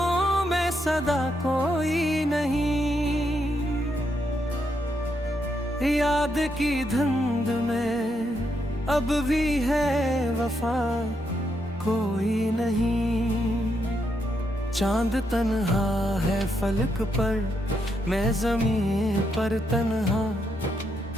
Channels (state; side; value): normal; both; correlation 0.79